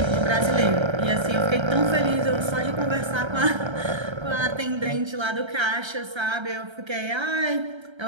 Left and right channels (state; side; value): late; left; 1.3 ms